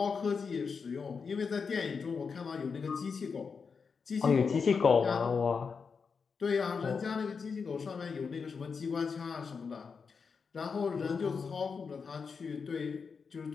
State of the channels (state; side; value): quieter; right; 5.5 dB